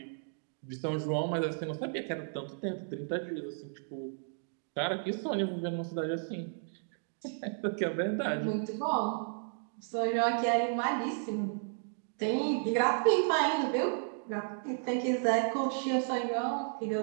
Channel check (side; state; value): left; silent; digital silence